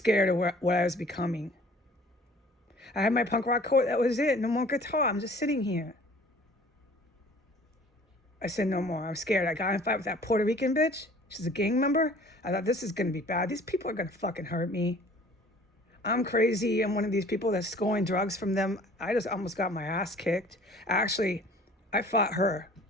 of what I was becoming. I had my punk rock coat. That was it. No more guitar. I'm just sitting here. I said no more. I'm scared. I got in a fight with that Puerto Rican bitch. She's a gang member. I thought this is going to be bad. These people are going to fucking hurt me. I'm crazy. I'm one of these people that's scoring drugs from them. I just almost got my ass kicked. Actually, I fought her.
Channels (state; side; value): normal; both; correlation 0.50